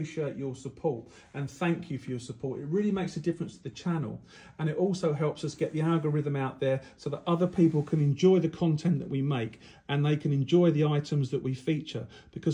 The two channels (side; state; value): both; identical; correlation 1.00